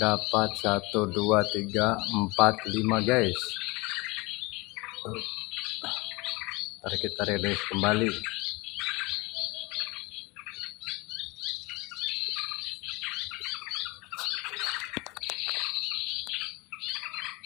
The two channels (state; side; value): quieter; right; 24.6 dB